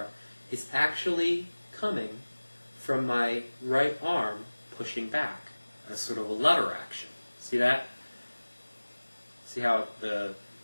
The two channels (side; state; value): both; inverted; correlation -1.00